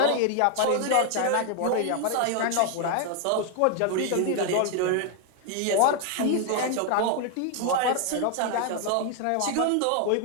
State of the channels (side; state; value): both; different; correlation 0.00